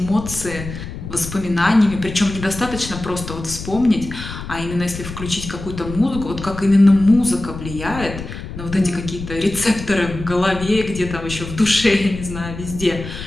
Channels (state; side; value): noise; left; rumble, 10 dB below the sound